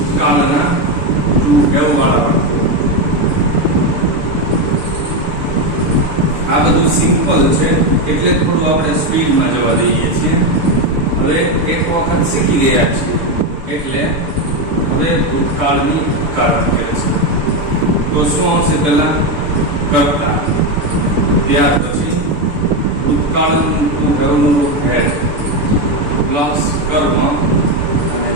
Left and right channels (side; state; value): left; late; 6.9 ms